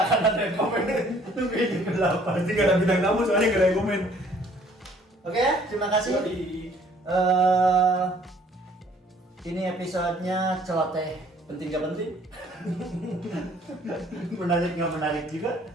akan ada yang komen. Tunggu ini ke 8. Pasti nggak ada bintang tamu soalnya nggak ada yang komen. Oke, terima kasih. Jadi, Ini episodenya celoteh penting gak penting? Menarik nggak menarik juga?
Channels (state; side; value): normal; both; correlation 0.58